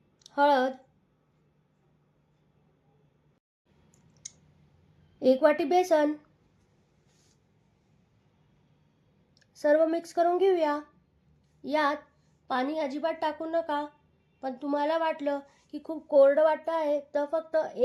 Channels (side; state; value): both; identical; correlation 1.00